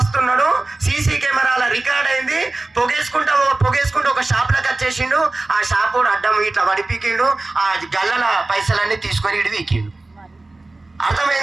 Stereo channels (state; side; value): quieter; left; 3.1 dB